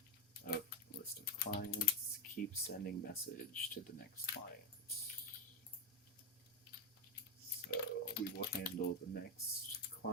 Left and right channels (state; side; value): normal; both; correlation 0.06